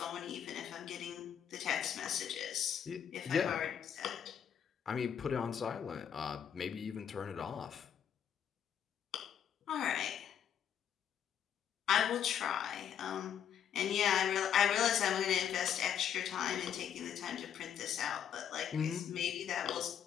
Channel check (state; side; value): quieter; right; 8.9 dB